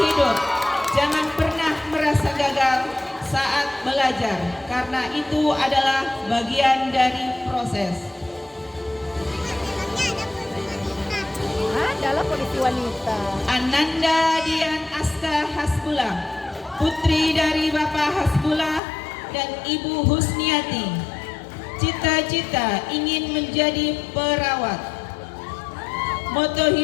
jangan pernah merasa gagal saat belajar, karena itu adalah bagian dari proses. Adalah polisi wanita. Ananda Dian Aska Hasbullah, putri dari Bapak Hasbullah dan Ibu Husniati. Cita-cita ingin menjadi perawat. Moto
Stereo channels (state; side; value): drops out; right; at 18.8 s